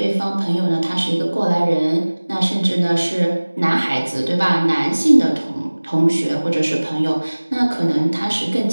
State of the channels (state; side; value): inverted; both; correlation -1.00